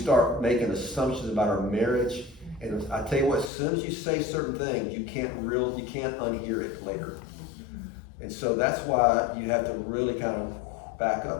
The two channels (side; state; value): right; drops out; at 3.5 s